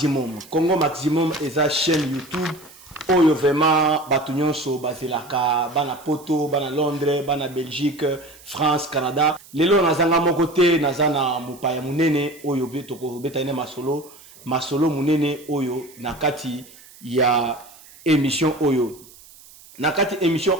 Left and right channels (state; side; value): noise; right; hiss, 22 dB below the sound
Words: Congo Maximum eza chaîne YouTube Oyo vraiment batunyonso bazelaka bana poto bana Londres bana Belgique France Canada lelo nazanga moko te nazana mupaya munene oyo betoko betane masolo munene oyo nakati ya émission oyo nakati émission